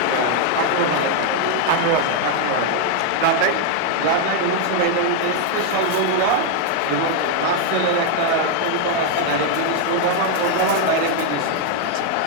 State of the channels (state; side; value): different; both; correlation 0.00